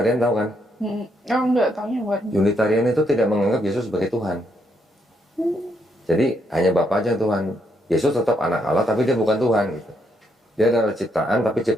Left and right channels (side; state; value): both; normal; correlation 0.76